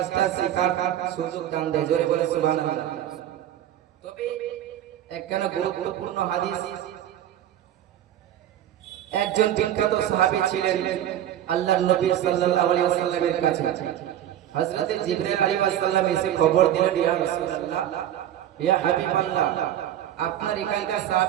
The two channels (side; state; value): left; quieter; 11.5 dB